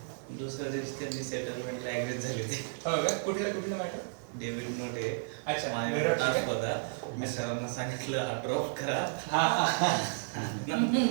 दुसऱ्या दिवशी त्यांनी सेटलमेंटला ऍग्री झाली होती. हो का? कुठलं मॅटर? डेव्हिड नोटे अच्छा, माझ्याकडे टास्क होता, मी सरांना सांगितलं हा ड्रॉप करा.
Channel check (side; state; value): left; silent; 56 dB below the other